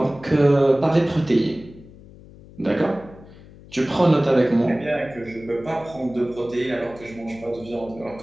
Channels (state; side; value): noise; left; hum, 21 dB below the sound